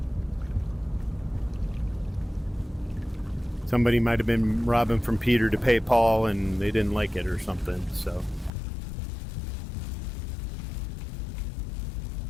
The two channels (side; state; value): right; drops out; at 8.5 s